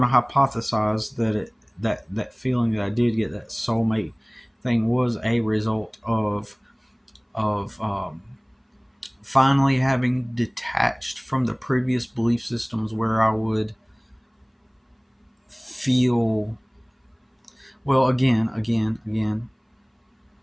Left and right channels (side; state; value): both; identical; correlation 1.00